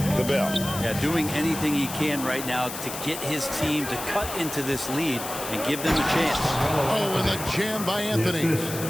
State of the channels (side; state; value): left; noise; hiss, 8 dB below the sound